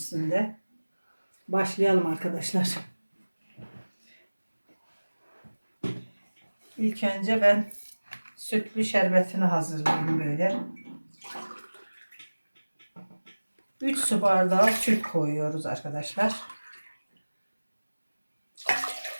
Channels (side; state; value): both; inverted; correlation -1.00